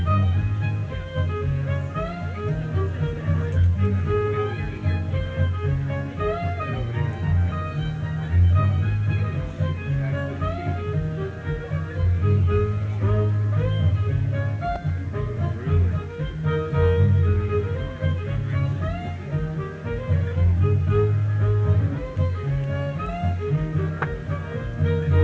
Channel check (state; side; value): identical; both; correlation 1.00